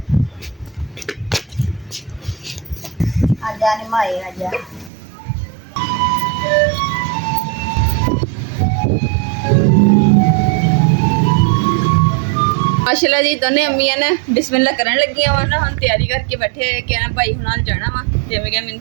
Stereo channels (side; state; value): left; drops out; at 4.9 s